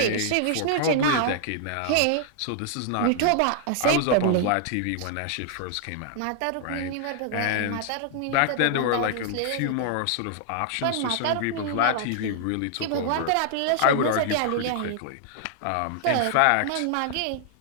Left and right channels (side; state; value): both; different; correlation -0.01